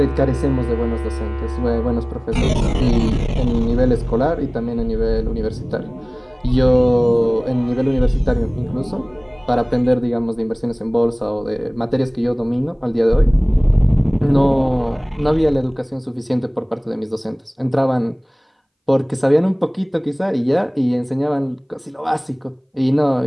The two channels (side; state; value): both; identical; correlation 1.00